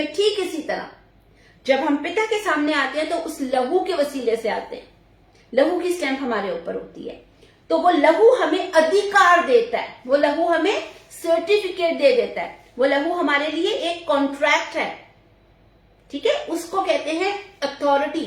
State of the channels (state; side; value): identical; both; correlation 1.00